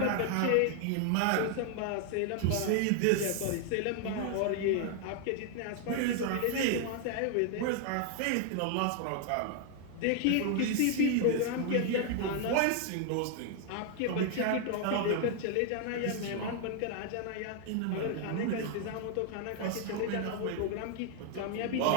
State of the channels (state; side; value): different; both; correlation 0.00